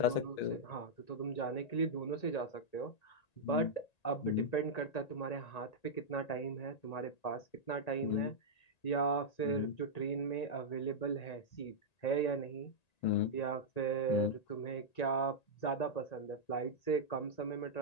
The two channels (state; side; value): late; right; 1.9 ms